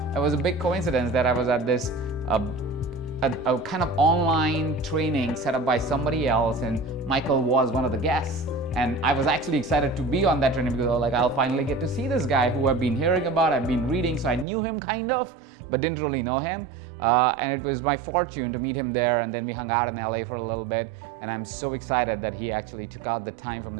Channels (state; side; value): drops out; left; at 14.5 s